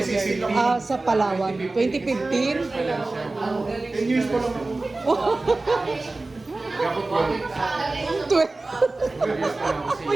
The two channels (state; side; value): quieter; left; 3.2 dB